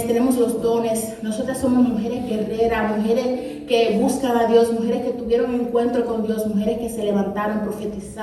tenemos los dones. Nosotras somos mujeres guerreras, mujeres que buscan a Dios, mujeres que tuvieron un encuentro con Dios, mujeres que se levantaron,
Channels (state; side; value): identical; both; correlation 1.00